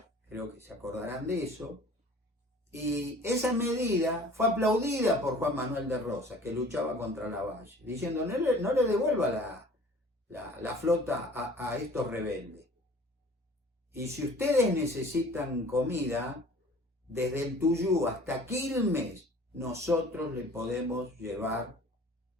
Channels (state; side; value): normal; both; correlation 0.48